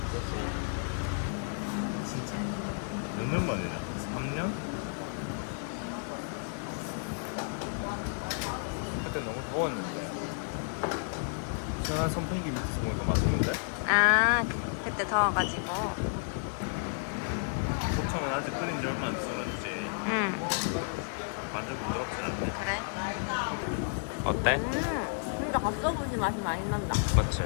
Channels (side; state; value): right; silent; 57 dB below the other